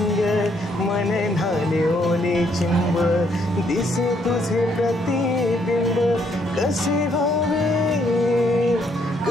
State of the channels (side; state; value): both; normal; correlation 0.70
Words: मन न्हाले ओले चिंब, दिसे तुझे प्रतिबिंब कसे भावे